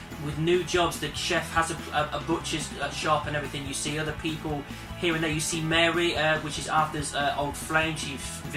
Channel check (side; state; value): both; identical; correlation 1.00